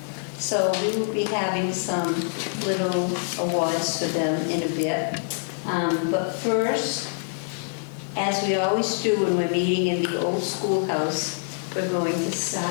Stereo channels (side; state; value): right; silent; digital silence